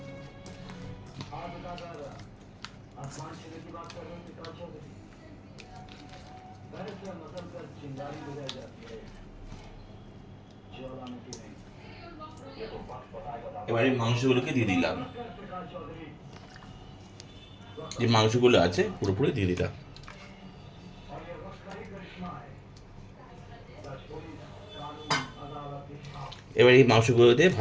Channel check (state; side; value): identical; both; correlation 1.00